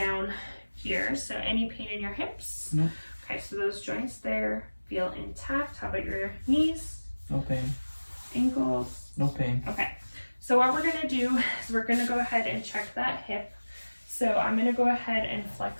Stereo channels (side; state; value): both; inverted; correlation -1.00